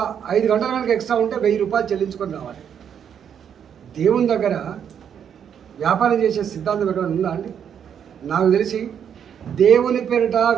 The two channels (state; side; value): quieter; left; 8.3 dB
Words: 5 గంటలు కనుక ఎక్స్ట్రా ఉంటే 1000 రూపాయలు చెల్లించుకొని రావాలి. దేవుని దగ్గర వ్యాపారం చేసే సిద్ధాంతం ఎక్కడ ఉందా అండి? నాకు తెలిసి దేవుని పేరిట